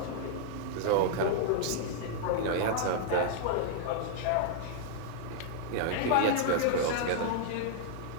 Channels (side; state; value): both; different; correlation -0.01